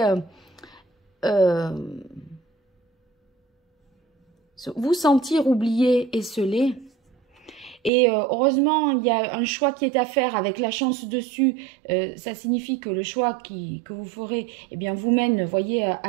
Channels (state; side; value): drops out; left; at 7.9 s